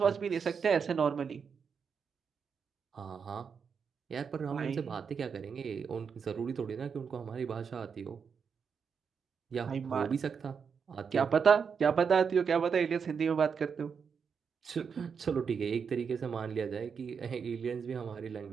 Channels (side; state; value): left; quieter; 6.3 dB